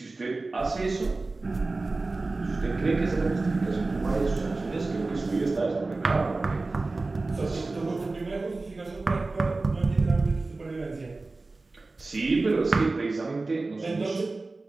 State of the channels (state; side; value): quieter; left; 3.4 dB